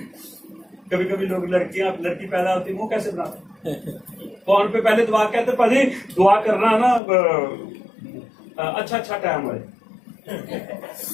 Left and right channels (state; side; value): drops out; right; at 7.0 s